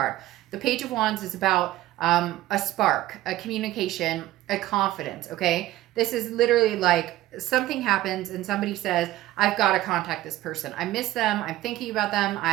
The Page of Wands is about a spark, a communication, a confidence, okay? This is literally like something happens and somebody says, I've got to contact this person. I miss them. I'm thinking about them.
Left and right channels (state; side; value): quieter; left; 15.5 dB